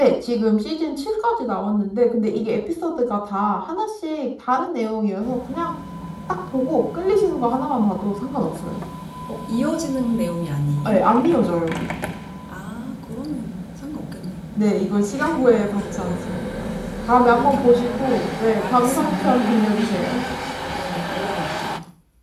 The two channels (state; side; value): identical; both; correlation 1.00